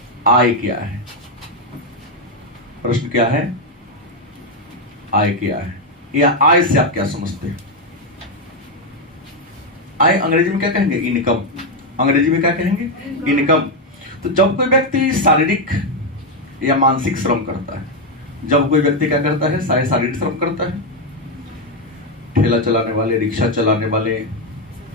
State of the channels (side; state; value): both; normal; correlation 0.04